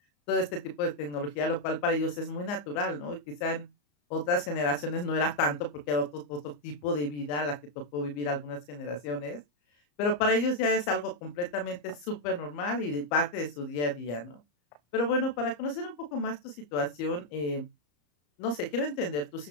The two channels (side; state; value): right; late; 34 ms